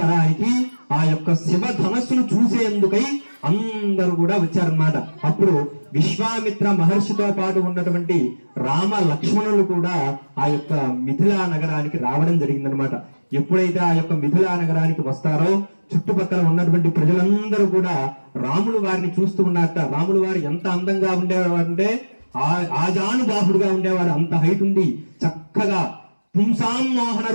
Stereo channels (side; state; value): both; inverted; correlation -1.00